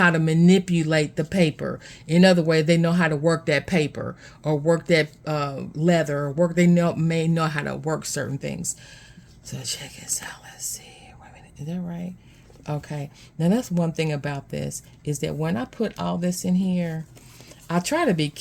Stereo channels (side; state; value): both; identical; correlation 1.00